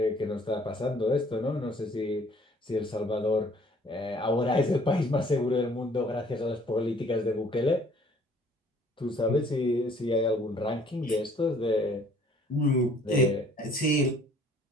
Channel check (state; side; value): normal; both; correlation 0.58